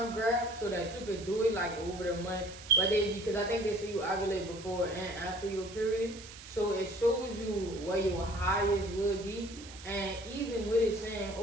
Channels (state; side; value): noise; right; hiss, 15 dB below the sound